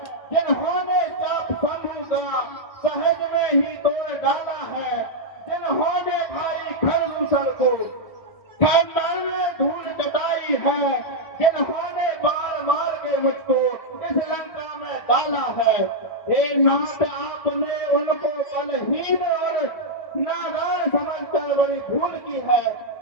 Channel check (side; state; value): right; late; 1.0 ms